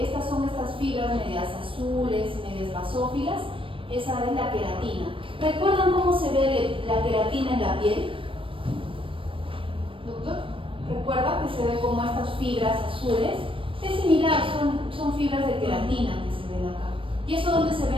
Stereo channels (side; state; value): left; late; 0.25 ms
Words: son estas fibras medias azules, medias basófilas, esa es la queratina. ¿Recuerdan cómo se ve la queratina en la piel? ¿Doctor? ¿Recuerda que se ve como estas fibras azules? Es similar, son fibras de queratina que se ven acá. ¿Y eso dónde se